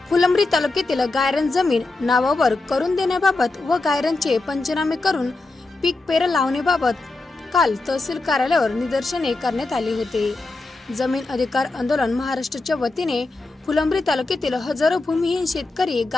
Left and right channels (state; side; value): quieter; right; 3.2 dB